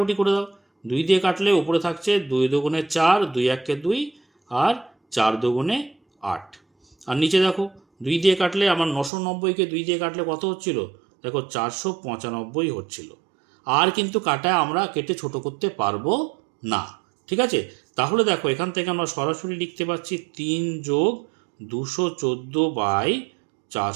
করে দাও, 2 দিয়ে কাটলে ওপরে থাকছে 2 দুগুণে 4, 2 একে 2, আর 4 দুগুণে 8। আর নিচে দেখো 2 দিয়ে কাটলে আমার 990কে 2 দিয়ে কাটলে কত হচ্ছিল? দেখো 495 হচ্ছিল। আর কিন্তু কাটা আমরা কেটে ছোট করতে পারবো না। ঠিক আছে, তাহলে দেখো এখান থেকে আমরা সরাসরি লিখতে পারছি 3 যোগ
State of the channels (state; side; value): drops out; left; at 9.1 s